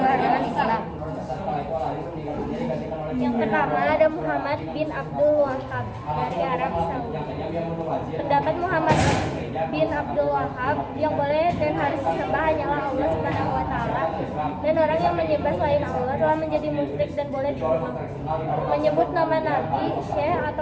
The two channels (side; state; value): both; identical; correlation 1.00